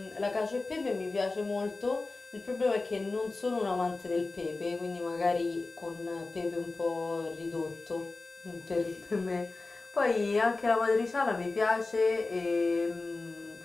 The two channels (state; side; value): quieter; right; 3.5 dB